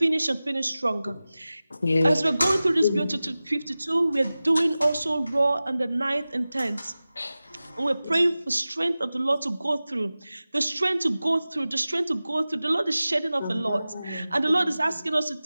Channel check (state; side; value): inverted; both; correlation -0.96